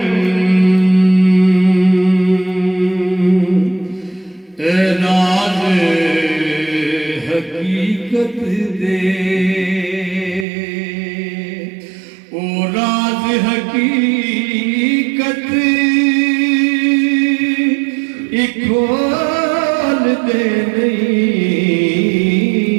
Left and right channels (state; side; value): drops out; left; at 10.5 s